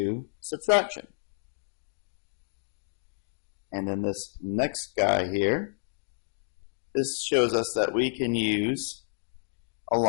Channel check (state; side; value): silent; right; digital silence